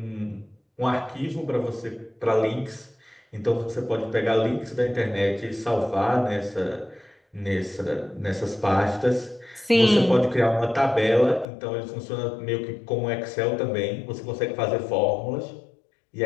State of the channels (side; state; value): right; drops out; at 11.5 s